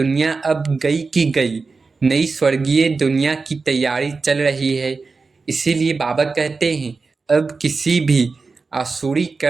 अब गई की गई, नई स्वर्गीय दुनिया की तैयारी चल रही है। इसीलिए बाबा कहते हैं अब किसी भी आसुरी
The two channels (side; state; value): left; quieter; 4.3 dB